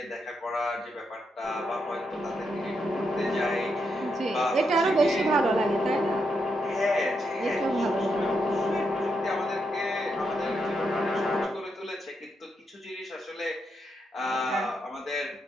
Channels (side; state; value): both; normal; correlation 0.81